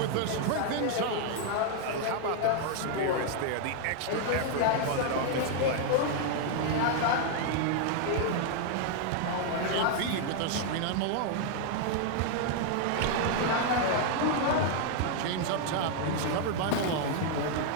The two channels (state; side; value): different; both; correlation 0.00